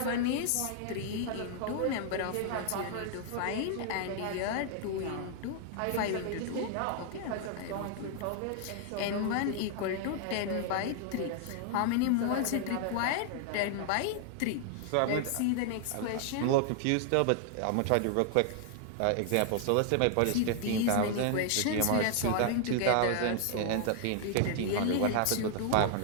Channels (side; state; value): both; different; correlation 0.00